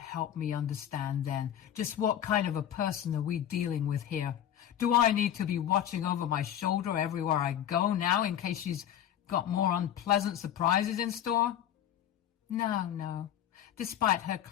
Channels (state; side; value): quieter; right; 10.4 dB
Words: me understand then, just what kind of a person are we dealing with here? Do I need to be watching over my shoulder everywhere I go now in case she's got more unpleasant surprises in store? No. Despite her